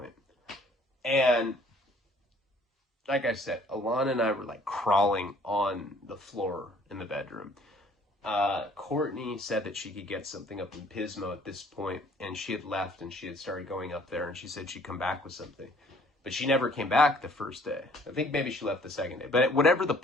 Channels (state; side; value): normal; both; correlation 0.58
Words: And like I said, Alana and I were like crawling on the floor in the bedroom. Courtney said that she could get something up in Pismo at this point, and she had left and she had started going up there, and she said she'd come back with something. But she never came back the first day. I think maybe she left the second day. But whatever the